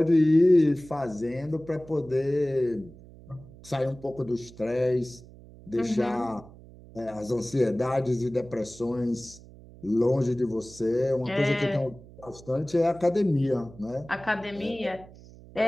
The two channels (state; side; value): noise; right; hum, 20 dB below the sound